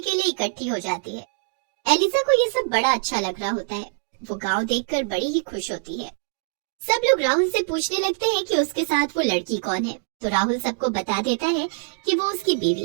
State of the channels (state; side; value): silent; left; digital silence